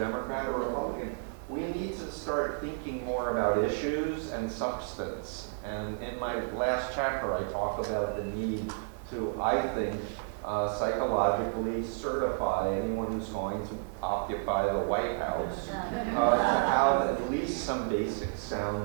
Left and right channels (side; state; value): left; silent; 57 dB below the other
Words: or Republican. We need to start thinking more about issues and substance. And in my last chapter, I talk about the need to, I think, psychologically certify anyone who's going to occupy the White House to have at least some basic sound